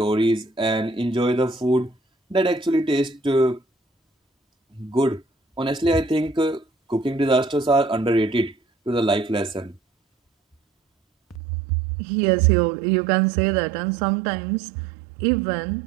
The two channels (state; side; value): drops out; left; at 11.4 s